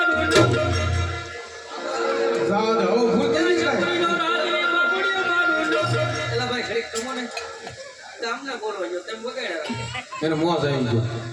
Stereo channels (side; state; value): both; identical; correlation 1.00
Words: જાવ દે હવે ભૂલ થઈ જાય. એલા ભાઈ ઘડીક તમો ને તમને બોલવા જો તેમ બગાડ્યા એને મોજ આવી ગયો.